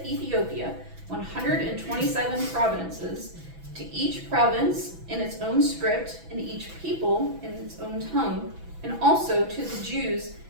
Ethiopia, 127 provinces, to each province in its own script, and each people in its own tongue, and also to the Jews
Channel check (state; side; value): late; left; 6.0 ms